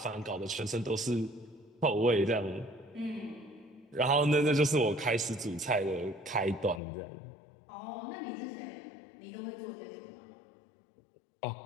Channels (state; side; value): drops out; right; at 6.8 s